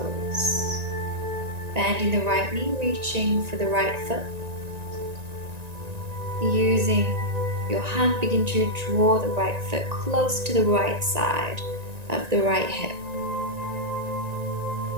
Bending the right knee, reaching for the right foot. Using your hand, begin to draw the right foot close to the right side of the right hip.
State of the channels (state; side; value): late; left; 1.9 ms